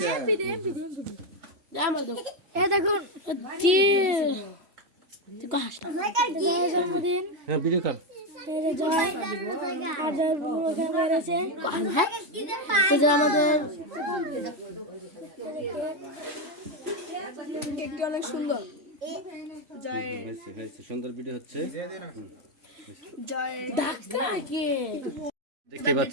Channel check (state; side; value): late; left; 3.0 ms